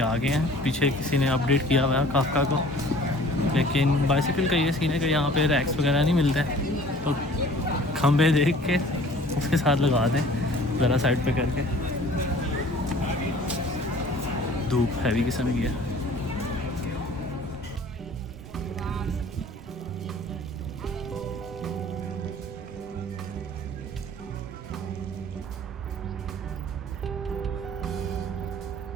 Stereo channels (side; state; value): both; normal; correlation 0.49